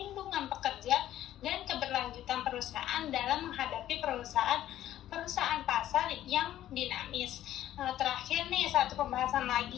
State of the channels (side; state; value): right; quieter; 12.7 dB